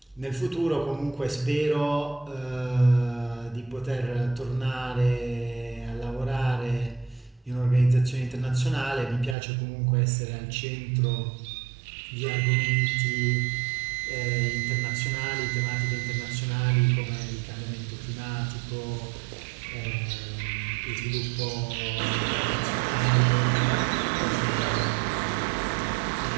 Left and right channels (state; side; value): drops out; left; at 9.3 s